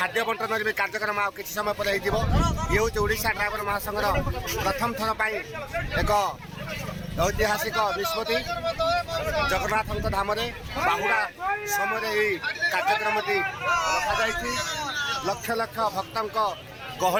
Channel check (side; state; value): both; identical; correlation 1.00